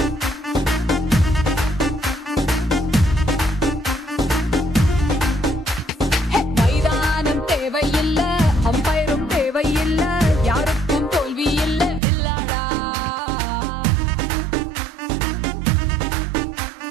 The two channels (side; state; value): left; drops out; at 12.0 s